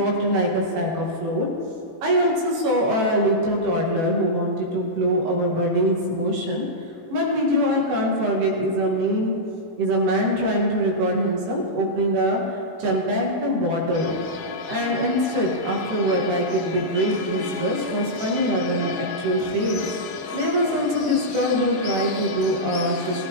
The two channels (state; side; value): late; left; 18 ms